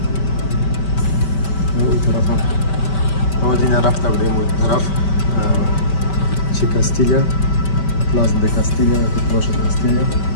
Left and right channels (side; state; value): right; late; 5.2 ms